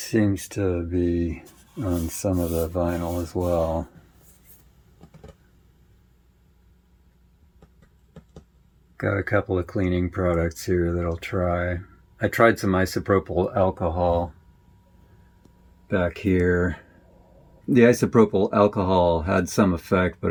to be on some of the vinyl as well. Got a couple of cleaning products here that I'll try. I tried some isopropyl alcohol back here. The isopropyl alcohol had some effect,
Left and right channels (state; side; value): identical; both; correlation 1.00